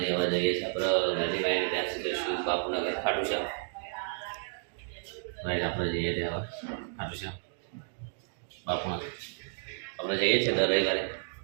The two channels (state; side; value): silent; left; digital silence